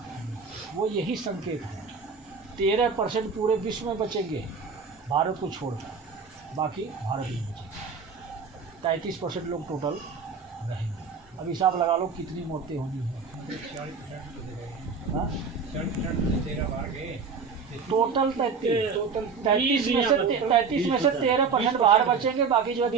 वो यही संकेत है। 13% पूरे विश्व में बचेंगे भारत को छोड़कर, बाकी भारत में बचेंगे। 33% लोग टोटल रहेंगे। अब हिसाब लगा लो कितनी मौतें होनी है। टोटल 33 में से 13% बाहर बचेंगे, बाकी जो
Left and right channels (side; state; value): left; quieter; 5.4 dB